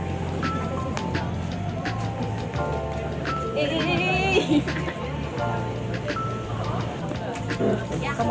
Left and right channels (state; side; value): identical; both; correlation 1.00